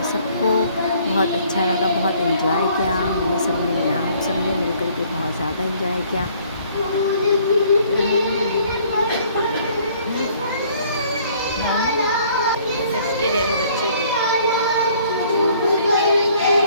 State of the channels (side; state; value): both; inverted; correlation -0.59